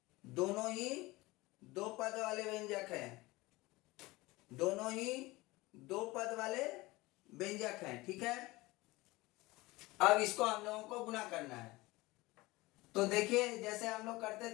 दोनों ही दो पद वाले व्यंजक हैं। दोनों ही दो पद वाले व्यंजक हैं, ठीक है। अब इसको हम लोगों को गुना करना है। तो देखिए जैसे हम लोग करते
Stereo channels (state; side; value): quieter; right; 21.0 dB